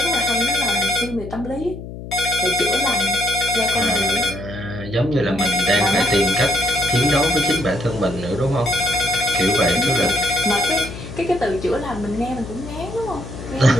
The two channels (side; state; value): left; noise; hum, 11 dB below the sound